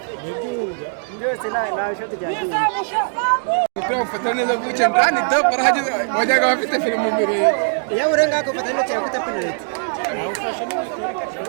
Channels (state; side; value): silent; left; digital silence